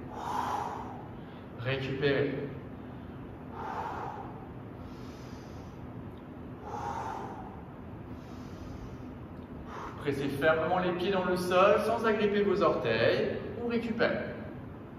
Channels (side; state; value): both; identical; correlation 1.00